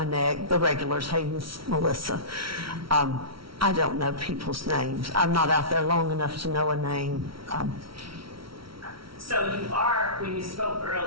neck, the regulars, hey, Miss Mellissa. I don't know people's names. I'm not out there long enough to know a name. So you are, when you spoke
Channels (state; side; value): late; left; 0.74 ms